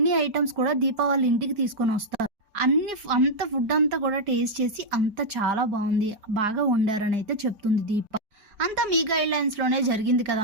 ఐటమ్స్ కూడా దీప వాళ్ళ ఇంటికి తీసుకొని వస్తారు. అంత ఫుడ్ అంతా కూడా టేస్ట్ చేసి అంత చాలా బాగుంది, బాగా వండారని అయితే చెప్తుంది దీప. అంతా మీ గైడ్ లైన్స్ లోనే జరిగింది కదా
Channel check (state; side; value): late; left; 4.7 ms